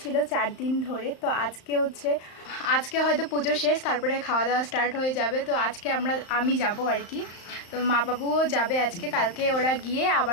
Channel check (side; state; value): right; late; 35 ms